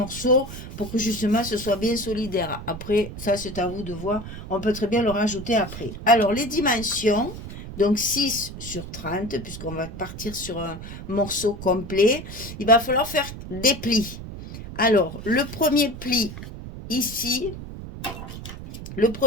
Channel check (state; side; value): noise; right; rumble, 10 dB below the sound